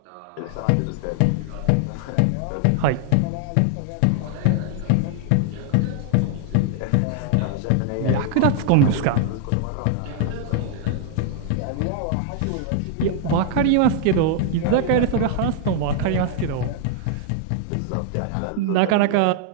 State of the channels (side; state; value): both; different; correlation 0.00